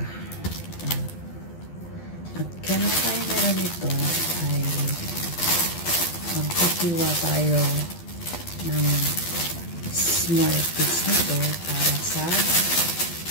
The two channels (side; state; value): right; late; 12 ms